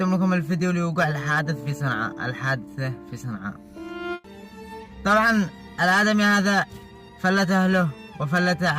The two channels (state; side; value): identical; both; correlation 1.00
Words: لكم الفيديو لوقوع الحادثة في صنعاء. طبعا الآدمي هذا فلت أهله وفلت